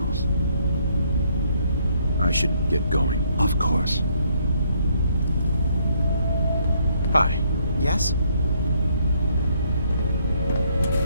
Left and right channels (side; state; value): both; inverted; correlation -0.69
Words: I should get going. Of course. Hi. Yes?